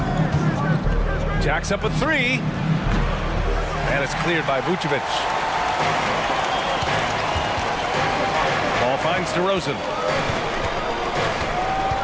Jacks up a 3. And it's cleared by Vucevic. Ball finds DeRozan.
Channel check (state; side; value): identical; both; correlation 1.00